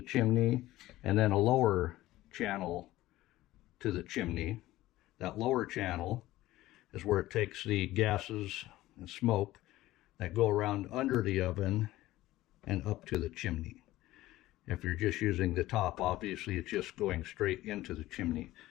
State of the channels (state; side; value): quieter; right; 16.5 dB